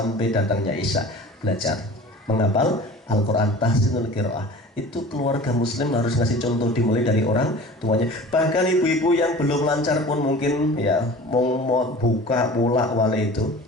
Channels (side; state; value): both; normal; correlation 0.41